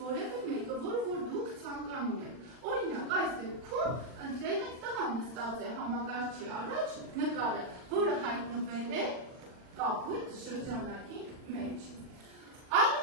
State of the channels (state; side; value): late; left; 40 ms